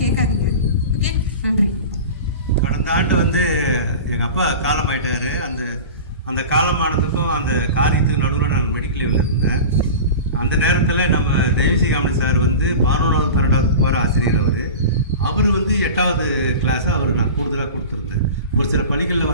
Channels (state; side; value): inverted; both; correlation -0.33